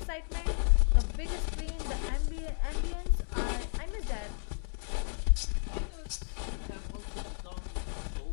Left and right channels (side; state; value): right; silent; digital silence